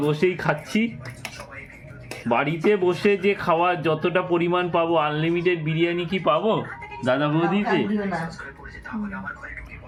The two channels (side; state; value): both; identical; correlation 1.00